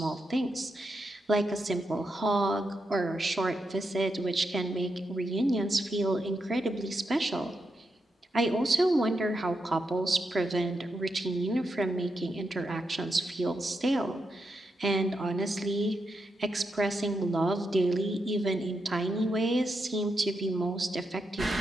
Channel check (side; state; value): both; normal; correlation 0.85